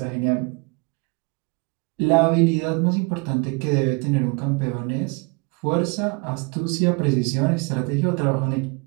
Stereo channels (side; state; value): left; quieter; 31.0 dB